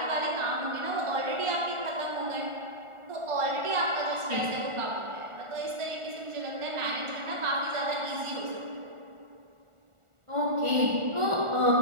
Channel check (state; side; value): late; left; 1.4 ms